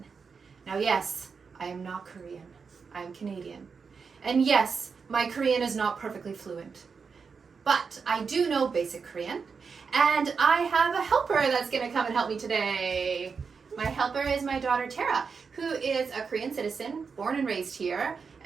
Now, yes, I am not Korean. I am Canadian. And yes, my Korean is not perfectly fluent. But I do know basic Korean, and I have a helper that's going to come and help me today. My helper is my daughter Tera, who is a Korean citizen, born and raised here,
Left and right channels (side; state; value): left; quieter; 5.5 dB